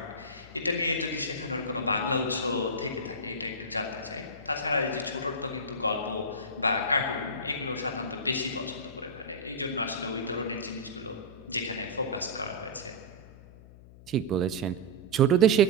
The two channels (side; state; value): left; noise; hum, 19 dB below the sound